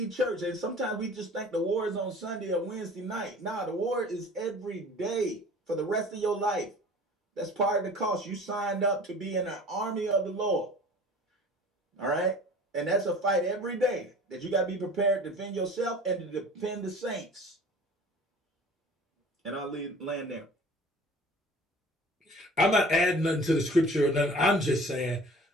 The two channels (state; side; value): normal; both; correlation 0.44